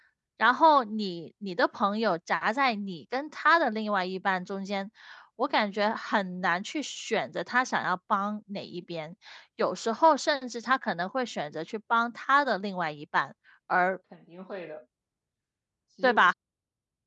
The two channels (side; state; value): both; identical; correlation 1.00